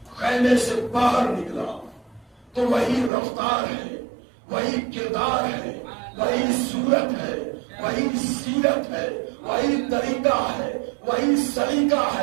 خیمے سے باہر نکلا تو وہی رفتار ہے، وہی کردار ہے، وہی صورت ہے، وہی سیرت ہے، وہی طریقہ ہے، وہی سلیقہ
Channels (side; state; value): left; drops out; at 3.1 s